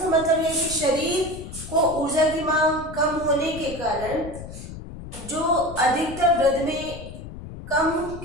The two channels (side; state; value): left; noise; rumble, 12 dB below the sound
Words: मतलब है कि शरीर को ऊर्जा की मांग कम होने के कारण जो अधिकतर वृद्ध में कम